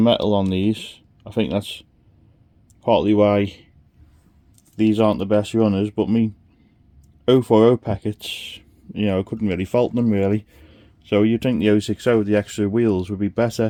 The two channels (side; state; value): both; identical; correlation 1.00